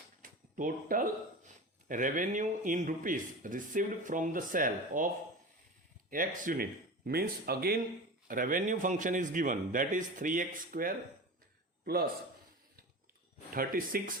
total revenue in rupees received from the sale of x unit, means again revenue function is given, that is 3x square plus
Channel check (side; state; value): both; normal; correlation 0.30